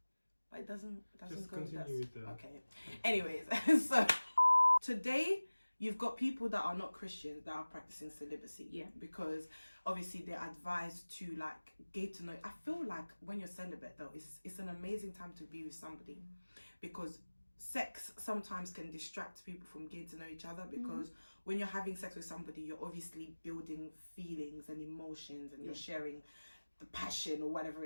But it doesn't Just go with continue that. with the... Okay. Anyways, so today you've got people that are not Christians that are practicing celibacy. Yeah. Because obviously they're advised to like get to know. I feel like when you're celibate though, it's an amazing time to be with somebody, because sex sometimes can distract people from getting to know each other, because when you're having sex with somebody, you're obviously building feelings and emotions, and you're sharing the passion or whatever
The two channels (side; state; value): both; inverted; correlation -1.00